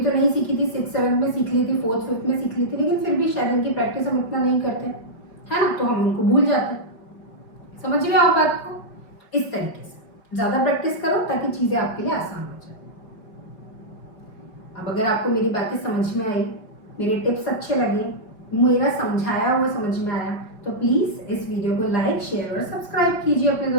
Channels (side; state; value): right; late; 4.9 ms